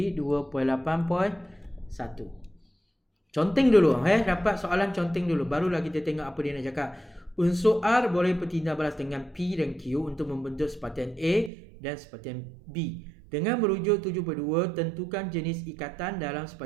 2.8.1. Conteng dulu, dapat soalan conteng dulu, barulah kita tengok apa dia nak cakap. Unsur R boleh bertindak balas dengan P dan Q untuk membentuk sepatian A dan sepatian B. Dengan merujuk 7.2, tentukan jenis ikatan dalam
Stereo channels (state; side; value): drops out; left; at 11.5 s